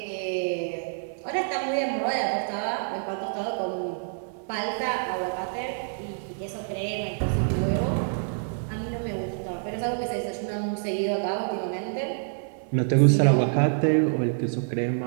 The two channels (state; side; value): silent; left; digital silence